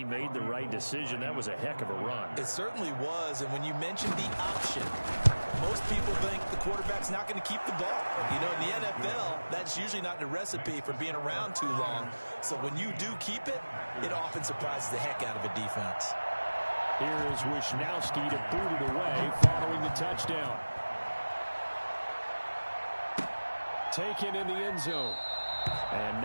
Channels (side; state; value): both; inverted; correlation -1.00